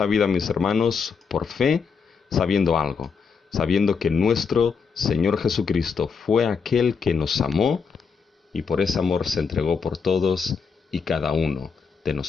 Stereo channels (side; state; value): right; quieter; 5.7 dB